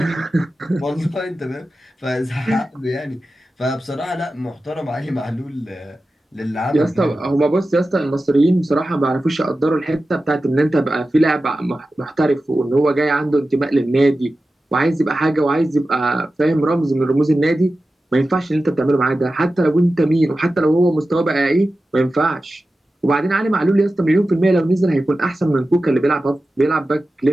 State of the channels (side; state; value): both; normal; correlation 0.94